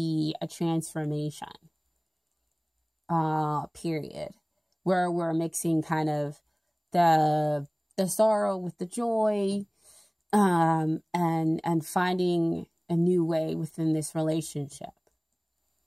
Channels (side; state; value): both; identical; correlation 1.00